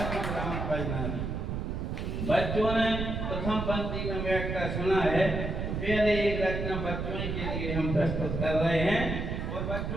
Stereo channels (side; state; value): right; noise; rumble, 3 dB below the sound